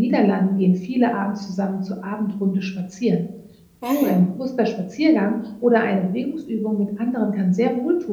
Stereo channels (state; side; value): identical; both; correlation 1.00